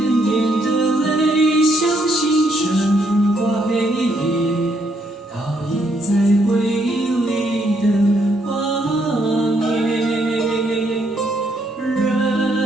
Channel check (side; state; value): both; normal; correlation 0.73